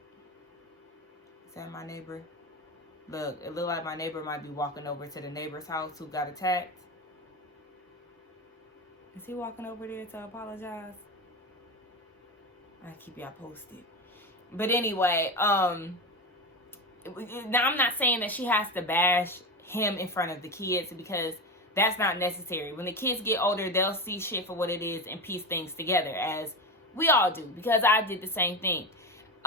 that my neighbor? Look, it looked like my neighbor might be walking over to the neighbor's house who got attacked. Is he walking over there to apologize? I keep y'all posted. But anyway, now I'm not saying that she has to bash him in front of the kids, because that's not necessary. When the kids get older, they'll see shit for what it is and piece things together, as we all do, because I did the same thing.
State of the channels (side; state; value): both; normal; correlation 0.21